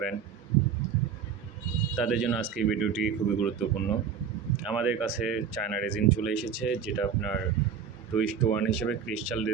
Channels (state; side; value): quieter; left; 7.2 dB